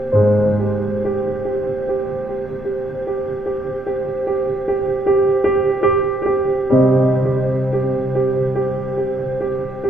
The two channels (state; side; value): normal; both; correlation 0.73